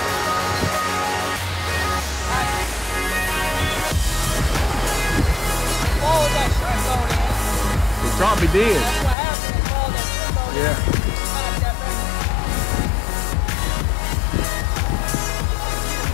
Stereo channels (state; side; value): drops out; right; at 9.2 s